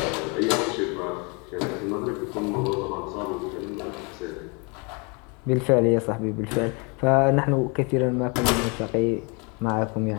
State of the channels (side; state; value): right; quieter; 31.7 dB